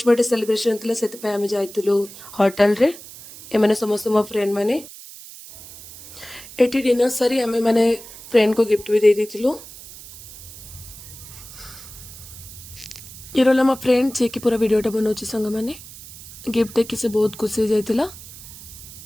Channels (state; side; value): noise; right; hiss, 16 dB below the sound